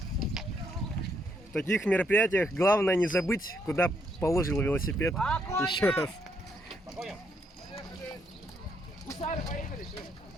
В таких мероприятиях главное не забыть, куда положил велосипед. Еще раз. По коням! Гусары, поехали!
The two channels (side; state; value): both; normal; correlation 0.74